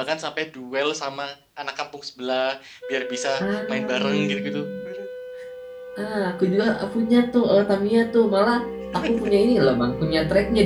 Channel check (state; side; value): identical; both; correlation 1.00